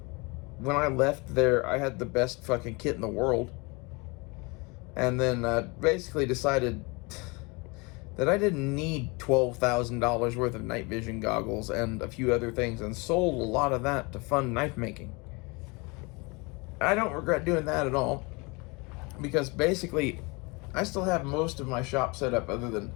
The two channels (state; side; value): quieter; right; 28.0 dB